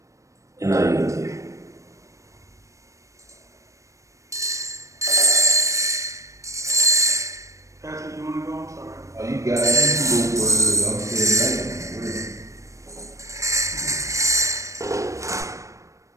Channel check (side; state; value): left; late; 0.15 ms